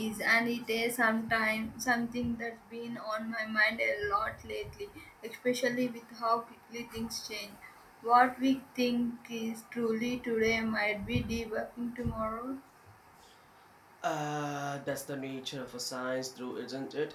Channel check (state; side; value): identical; both; correlation 1.00